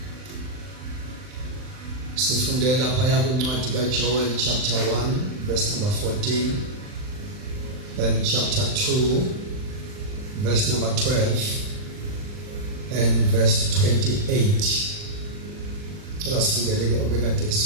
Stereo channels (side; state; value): left; late; 39 ms